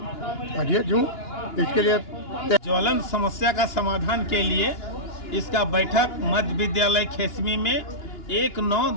अध्यक्ष हूँ। इसके लिए ज्वलन समस्या का समाधान के लिए इसका बैठक मध्य विद्यालय खेसमी में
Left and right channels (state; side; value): late; right; 2.9 ms